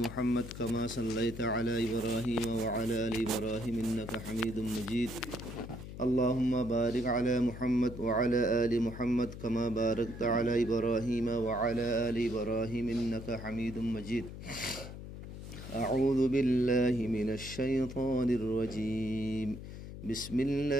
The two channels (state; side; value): noise; left; hum, 11 dB below the sound